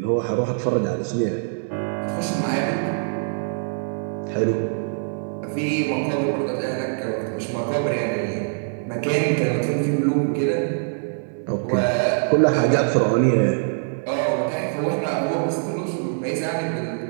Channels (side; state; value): left; silent; digital silence